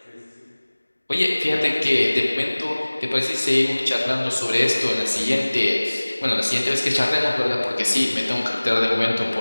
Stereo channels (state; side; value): inverted; both; correlation -1.00